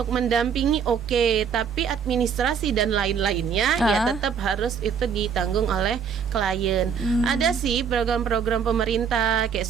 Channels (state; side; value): quieter; left; 7.0 dB